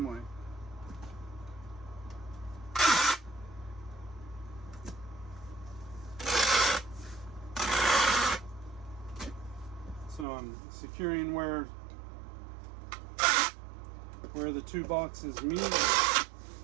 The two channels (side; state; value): left; drops out; at 10.2 s